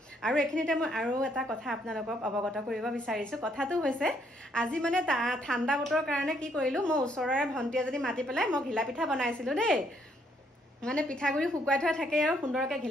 আৰু এখিনিতে মই আৰু এটা কথা আপোনালোকক অৱগত কৰিব বিচাৰিছো কথাটো হৈছে আজি মানে ঠাণ্ডা বতৰৰ কাৰণে কি কৰিলো মই ওচৰৰে ভণ্টি এজনী মাতি পেলাই মই ঘিলা পিঠা বনাইছিলো দেই মানে পিঠাগুৰি শুকুৱাই থোৱা থাকে আৰু সুন্দৰকৈ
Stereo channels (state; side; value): normal; both; correlation 0.70